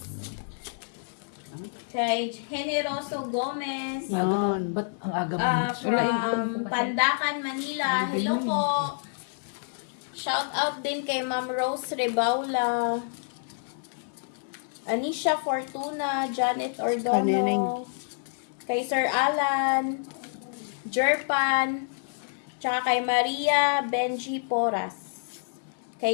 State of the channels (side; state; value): right; silent; digital silence